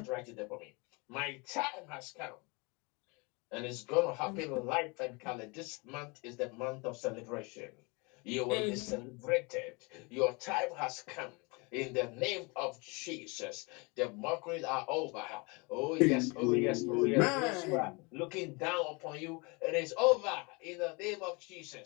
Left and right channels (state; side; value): quieter; right; 28.7 dB